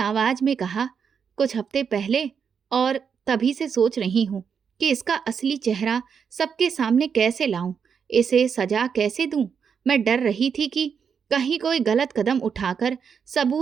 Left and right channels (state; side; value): quieter; left; 6.7 dB